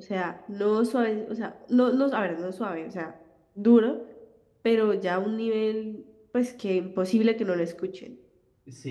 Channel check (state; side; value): identical; both; correlation 1.00